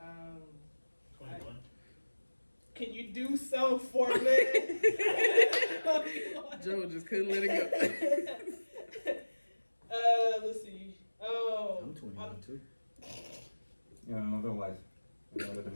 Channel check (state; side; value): inverted; both; correlation -1.00